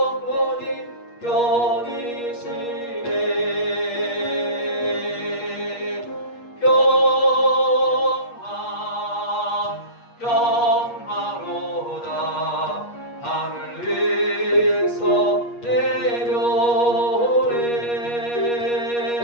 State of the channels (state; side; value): late; right; 8.4 ms